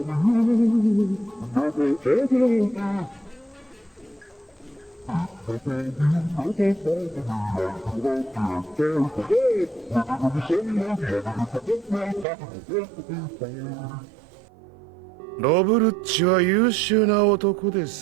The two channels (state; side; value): drops out; left; at 12.2 s